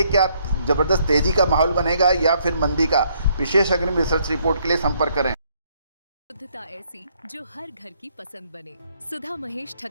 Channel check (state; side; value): inverted; both; correlation -0.69